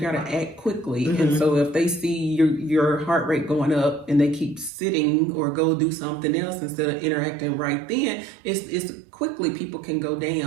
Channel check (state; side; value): drops out; left; at 4.7 s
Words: to act quickly, and so if they see your heart rate going up and they keep sitting or go do something else instead of interacting right then, it's quickly people can go